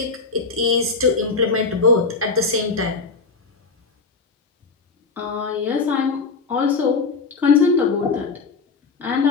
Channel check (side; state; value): right; quieter; 4.4 dB